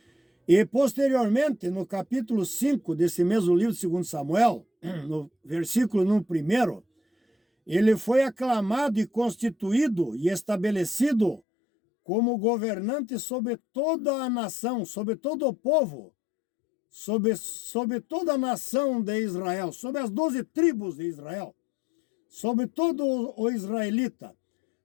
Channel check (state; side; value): drops out; right; at 11.4 s